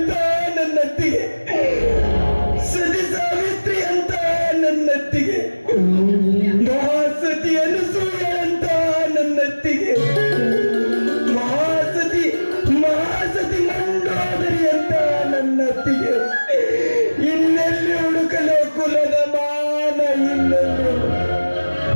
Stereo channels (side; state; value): both; inverted; correlation -1.00